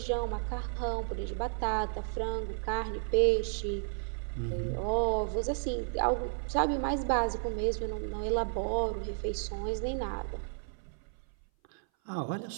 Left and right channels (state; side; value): silent; left; 56 dB below the other